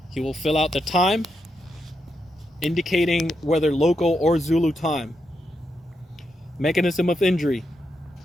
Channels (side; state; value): both; normal; correlation 0.84